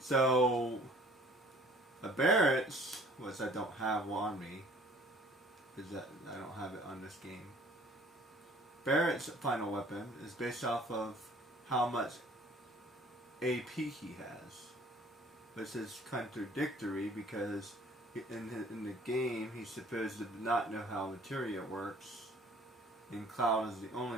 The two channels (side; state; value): both; normal; correlation 0.54